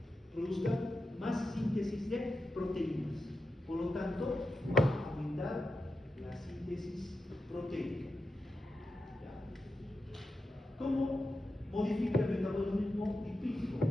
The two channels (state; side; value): normal; both; correlation 0.89